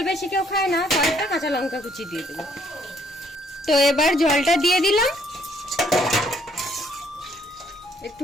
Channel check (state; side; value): normal; both; correlation 0.67